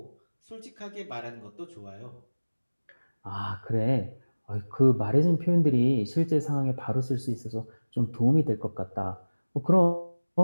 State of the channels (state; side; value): inverted; both; correlation -1.00